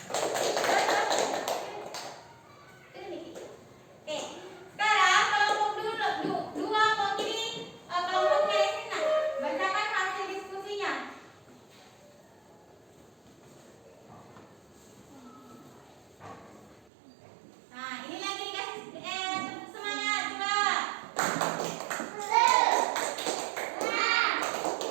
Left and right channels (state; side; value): drops out; left; at 16.9 s